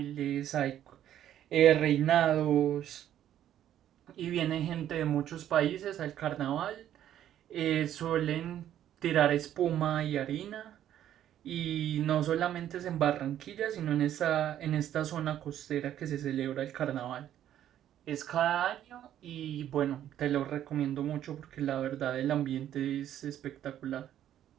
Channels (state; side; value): quieter; left; 11.2 dB